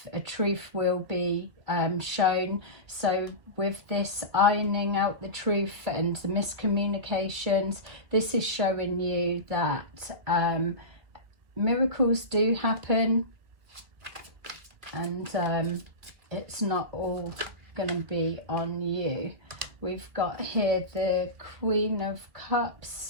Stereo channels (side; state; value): left; late; 2.5 ms